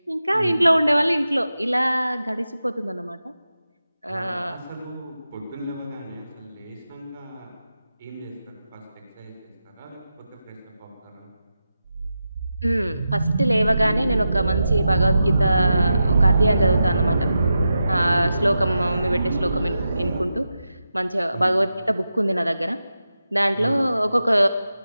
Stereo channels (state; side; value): inverted; both; correlation -0.90